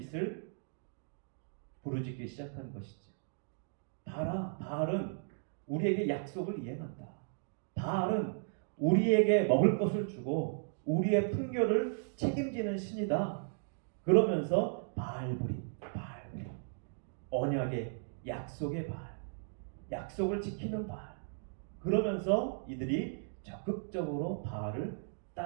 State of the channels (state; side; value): silent; left; digital silence